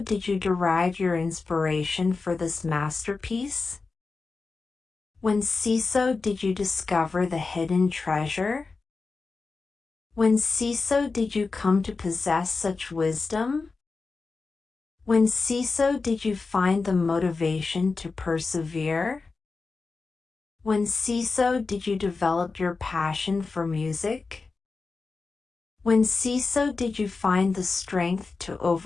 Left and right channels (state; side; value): quieter; right; 4.2 dB